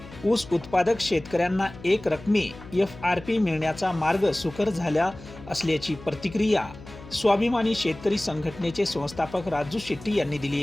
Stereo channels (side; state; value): left; noise; hum, 17 dB below the sound